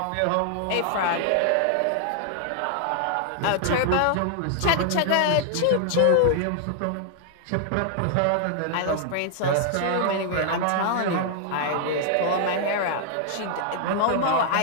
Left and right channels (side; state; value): both; different; correlation 0.00